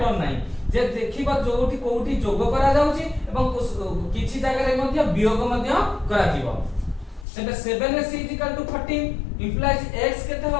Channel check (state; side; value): drops out; right; at 7.2 s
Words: नाही जे देखिबा जोठी कोठी जोग करा जाउची एवं किछि जागा रे मध्ये वियोग मध्ये करा दिबो तेबे 7s = 14 implies x केते